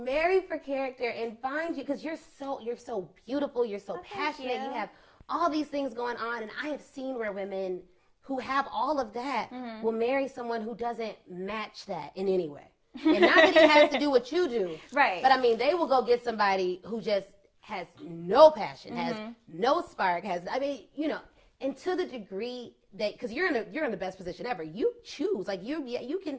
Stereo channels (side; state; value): both; identical; correlation 1.00